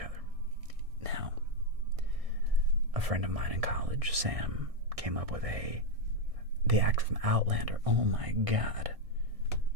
Now, a friend of mine in college, Sam, came up with the actor from Outlander. Oh my God.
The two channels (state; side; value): late; left; 1.6 ms